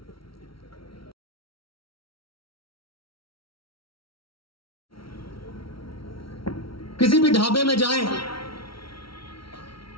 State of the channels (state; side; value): late; right; 0.75 ms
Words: किसी भी ढाबे में जाएं,